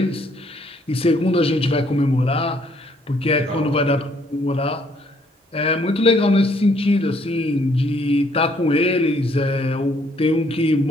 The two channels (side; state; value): both; normal; correlation 0.66